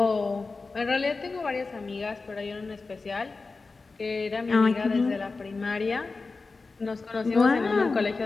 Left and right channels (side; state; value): right; quieter; 4.0 dB